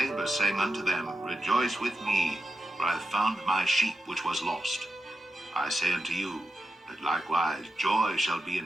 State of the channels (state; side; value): normal; both; correlation 0.89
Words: saying unto them, Rejoice with me, for I have found my sheep which was lost. I say unto you, that likewise joy shall be